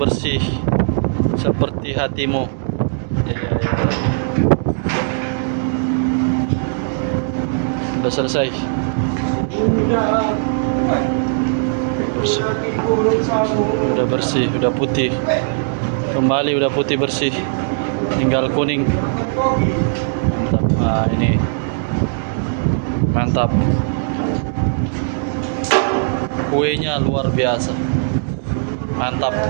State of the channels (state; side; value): silent; left; digital silence